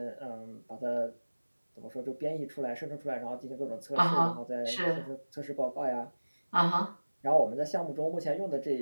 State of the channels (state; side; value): inverted; both; correlation -1.00